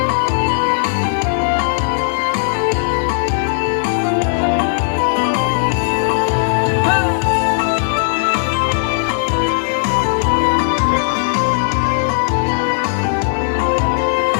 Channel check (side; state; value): right; silent; digital silence